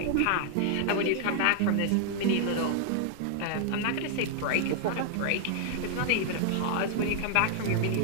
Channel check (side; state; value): both; different; correlation 0.00